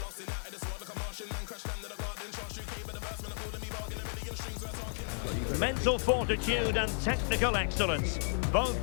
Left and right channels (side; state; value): right; silent; 55 dB below the other